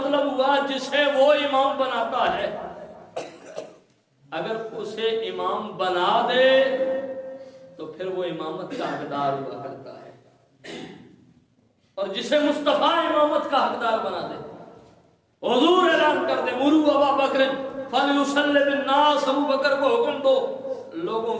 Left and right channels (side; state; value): both; identical; correlation 1.00